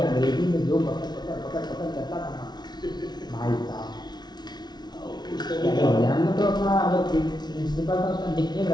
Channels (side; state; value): right; late; 0.20 ms